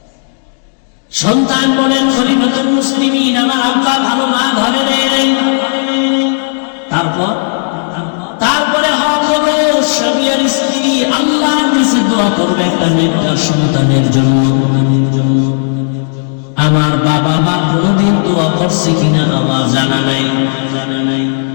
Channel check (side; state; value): right; silent; digital silence